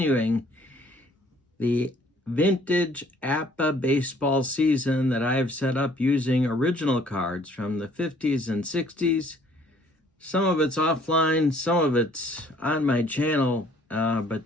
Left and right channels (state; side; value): normal; both; correlation 0.59